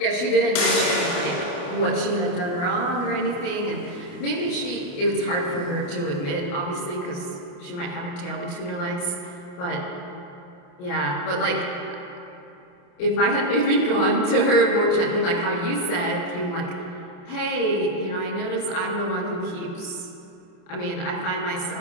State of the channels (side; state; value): right; late; 28 ms